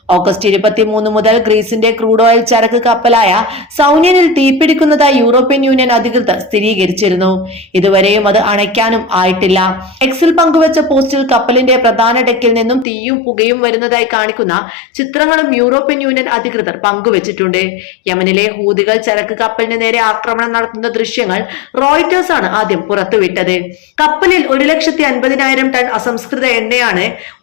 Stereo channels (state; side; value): drops out; right; at 12.9 s